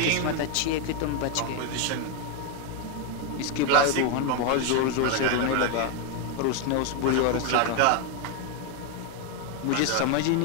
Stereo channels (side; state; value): both; different; correlation 0.01